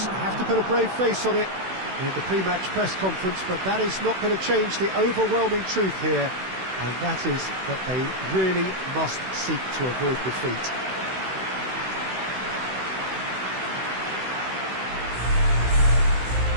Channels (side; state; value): left; late; 16 ms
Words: have to put a brave face on it in the pre-match press conference, but that is not going to change the overwhelming truth here, and that is that they really must seek to avoid defeat.